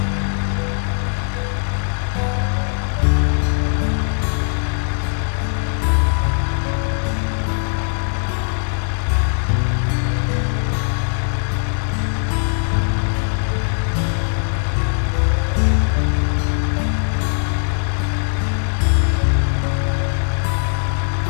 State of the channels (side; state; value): right; silent; digital silence